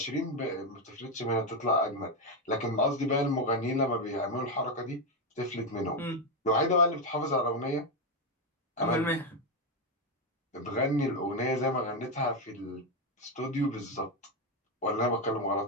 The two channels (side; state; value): both; normal; correlation 0.06